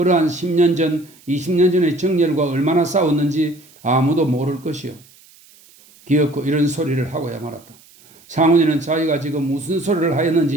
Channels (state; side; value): noise; right; hiss, 27 dB below the sound